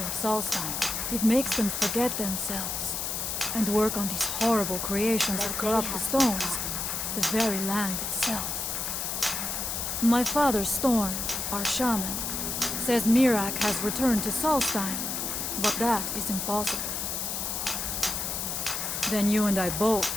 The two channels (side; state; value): left; noise; hiss, 2 dB below the sound